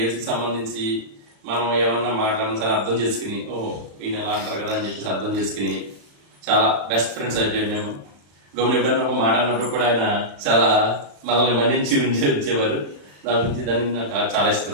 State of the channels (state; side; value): late; left; 35 ms